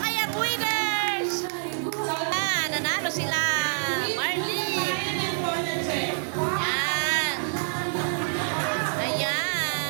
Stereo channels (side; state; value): left; silent; 60 dB below the other